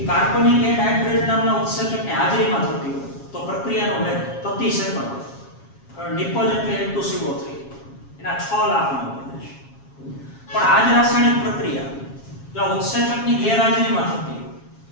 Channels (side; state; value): right; late; 7.3 ms